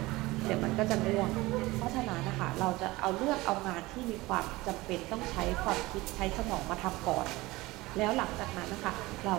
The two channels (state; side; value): quieter; left; 20.3 dB